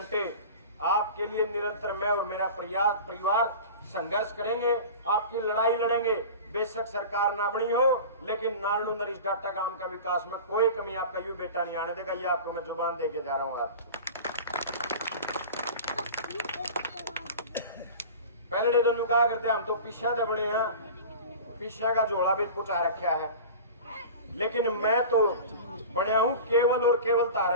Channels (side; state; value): both; inverted; correlation -0.35